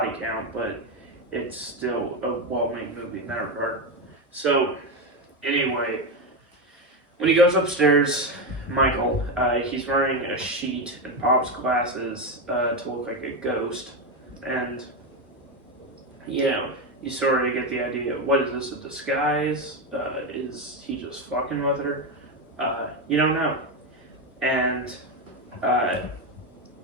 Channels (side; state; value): both; normal; correlation 0.12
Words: count, but it's still a well-made movie in that regard. So, anyway, when he goes upstairs, Michael, he's wearing a sheet and Bob's glasses to look like a ghost, and you know, you sort of get the idea. What is this, a disguise? Is he just fucking with her? You don't know, and